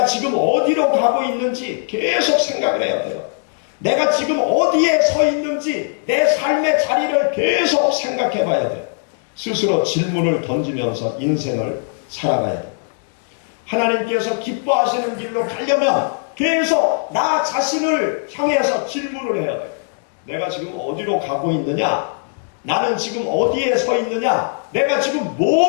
지금 어디로 가고 있는지 계속 생각을 해야 돼요. 내가 지금 어디에 서 있는지 내 삶의 자리를 계속 생각해 봐야 돼요. 스스로 질문을 던지면서 인생을 살아가야 돼요. 하나님께서 기뻐하시는 길로 가려면 계속 나 자신을 향해서 질문을 해야 돼요. 내가 지금 어디로 가고 있느냐? 나는 지금 어디에 서 있느냐? 내가 지금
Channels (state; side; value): silent; right; digital silence